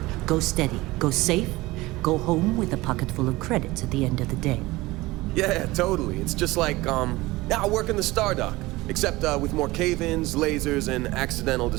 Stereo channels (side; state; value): left; quieter; 20.1 dB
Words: Go steady, go safe, go home with a pocket full of credits at the end of the day. Yeah, totally. It's just like, I work in the Stardock. Except with more cave-ins, lasers, and accidental